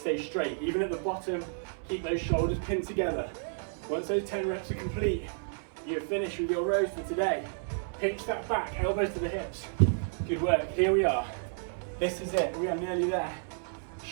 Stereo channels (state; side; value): silent; left; 57 dB below the other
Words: straight. Even at the bottom, keep those shoulders pinned together. Once those 10 reps are complete, you're finished with your rows for today. Pinch that back, elbows to the hips. Good work. Here we are. This is it. We are nearly there.